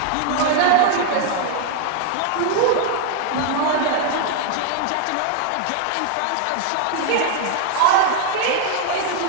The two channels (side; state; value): both; different; correlation 0.00